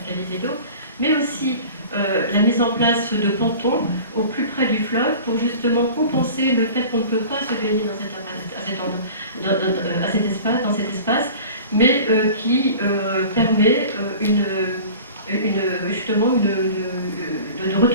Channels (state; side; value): inverted; both; correlation -0.40